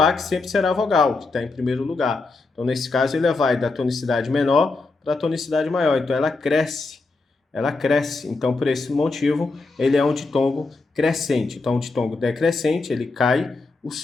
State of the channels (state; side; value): quieter; right; 3.6 dB